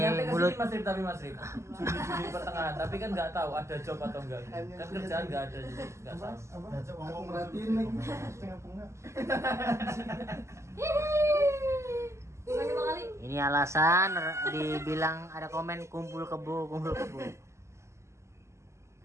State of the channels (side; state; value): left; late; 0.13 ms